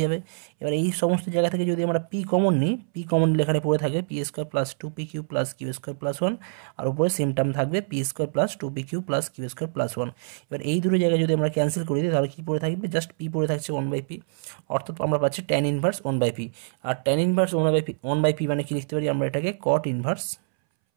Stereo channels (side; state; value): left; silent; 61 dB below the other